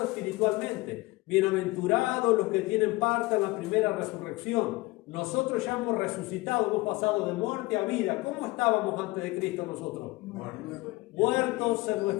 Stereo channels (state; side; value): quieter; right; 21.5 dB